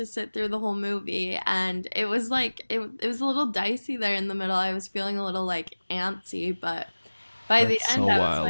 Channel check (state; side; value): inverted; both; correlation -1.00